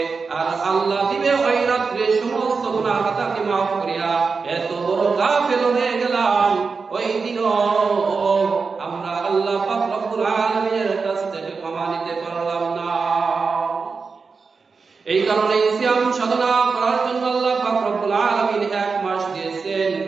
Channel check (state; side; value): quieter; left; 4.8 dB